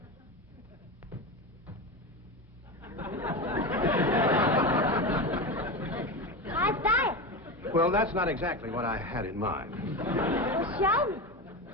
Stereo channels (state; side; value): normal; both; correlation 0.21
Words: How's that? Well, that's not exactly what I had in mind. Well, show me.